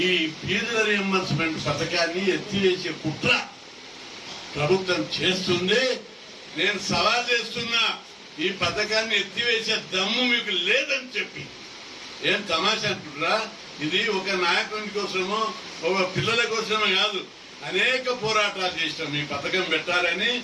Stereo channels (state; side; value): identical; both; correlation 1.00